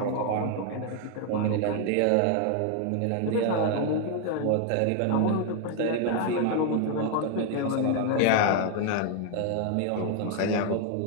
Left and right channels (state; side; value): different; both; correlation 0.00